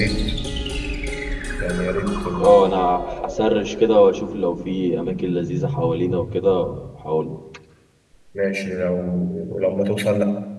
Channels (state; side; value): identical; both; correlation 1.00